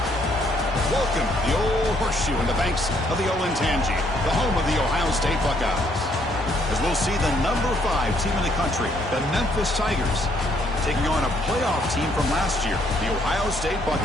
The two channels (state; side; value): normal; both; correlation 0.68